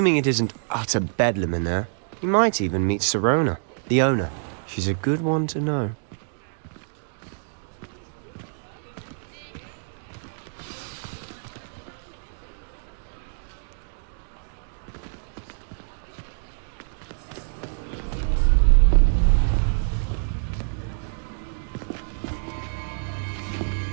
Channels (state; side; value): silent; left; digital silence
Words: it isn't utter bedlam in there, you might even meet Sirona, the owner. She's a good one to know.